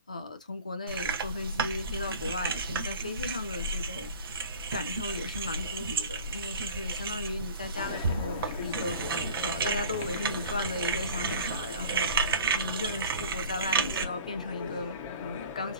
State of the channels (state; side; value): inverted; both; correlation -0.43